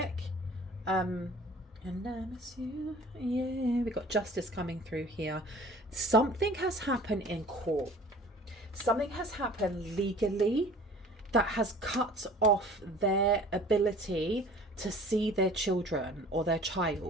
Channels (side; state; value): both; normal; correlation 0.47